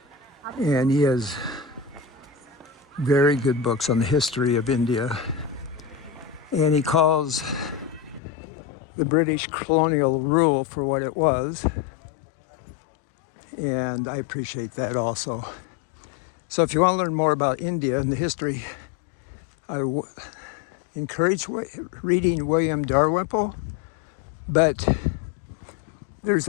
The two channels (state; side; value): drops out; right; at 8.2 s